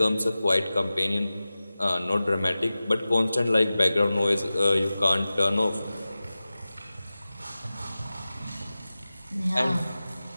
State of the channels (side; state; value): both; inverted; correlation -0.96